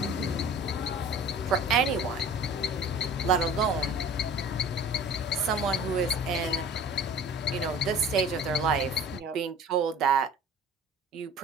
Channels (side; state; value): both; normal; correlation 0.44